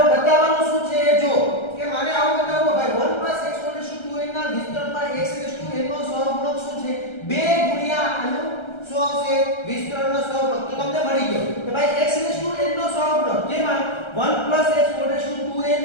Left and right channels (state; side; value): late; right; 1.3 ms